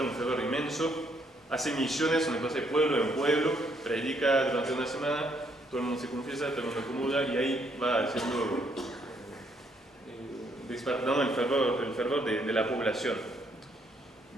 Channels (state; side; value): normal; both; correlation 0.71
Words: un fervor inmenso, hace misiones donde pasa de pueblo en pueblo, predica durante una semana, todo el mundo se confiesa, todo el mundo acomoda, y ahí va haciendo, despertando el fervor de la población.